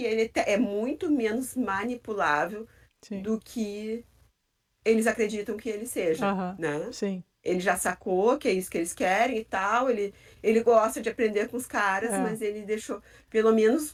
ele é muito menos manipulável Sim. do que eles acreditam que ele seja, Aham. né? Sim. ele já sacou que é isso que eles querem e tal. Ele gosta de aprender com os caras, É. mas ele deixou, pelo menos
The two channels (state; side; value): identical; both; correlation 1.00